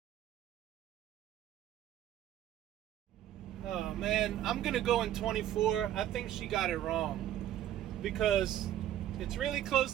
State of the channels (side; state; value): left; quieter; 12.1 dB